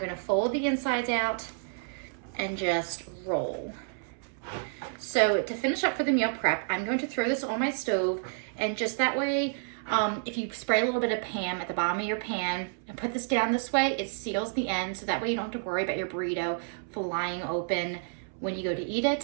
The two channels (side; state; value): left; silent; 58 dB below the other